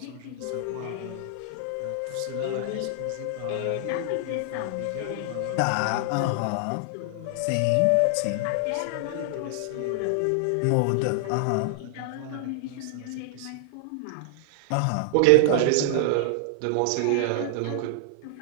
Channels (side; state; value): both; different; correlation 0.00